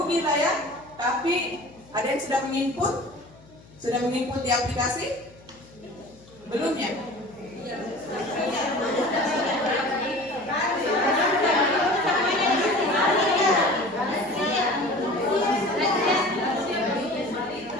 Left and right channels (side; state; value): left; noise; hum, 24 dB below the sound